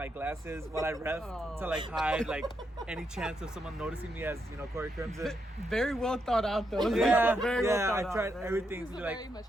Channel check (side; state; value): both; normal; correlation 0.80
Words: glasses while I ref to hide any chance of someone noticing me as Corey Crimson. Very well thought out though. Yeah, Very well thought I tried out. everything This to is do very much